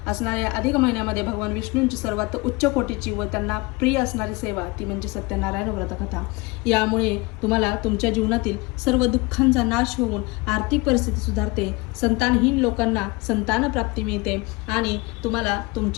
असणाऱ्या अधिक महिन्यामध्ये भगवान विष्णूंची सर्वात उच्च कोटीची व त्यांना प्रिय असणारी सेवा ती म्हणजे सत्यनारायण व्रतकथा. यामुळे तुम्हाला तुमच्या जीवनातील सर्व दुःखांचा नाश होऊन आर्थिक परिस्थिती सुधारते, संतानहीन लोकांना संतान प्राप्ती मिळते आणि तुम्हाला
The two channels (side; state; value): right; quieter; 24.7 dB